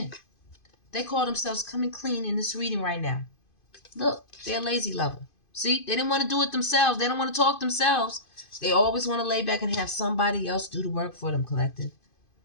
They call themselves coming clean in this reading right now. Look, they're a lazy lover. See, they didn't want to do it themselves. They don't want to talk themselves. They always want to lay back and have somebody else do the work for them, collective.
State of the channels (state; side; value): late; right; 2.5 ms